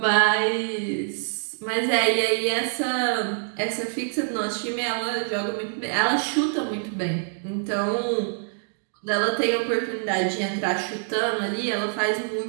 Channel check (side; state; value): left; silent; digital silence